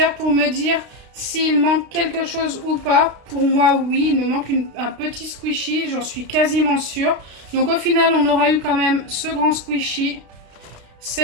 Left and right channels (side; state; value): left; late; 32 ms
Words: pour me dire s'il manque quelque chose ou pas. Pour moi, oui, il me manque un petit squishy. J'en suis quasiment sûre. Donc au final, on aura eu quand même ce grand squishy.